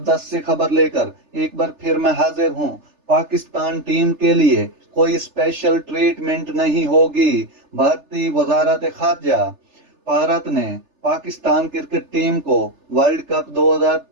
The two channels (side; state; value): left; late; 3.4 ms